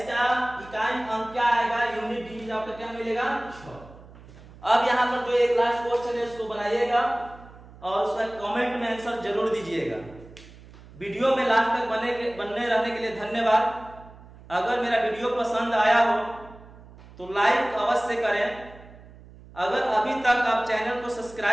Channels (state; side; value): noise; right; hum, 20 dB below the sound